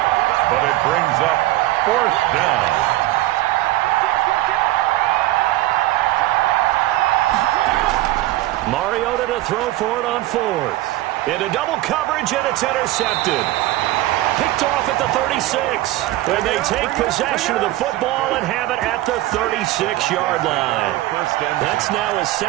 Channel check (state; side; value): quieter; left; 16.6 dB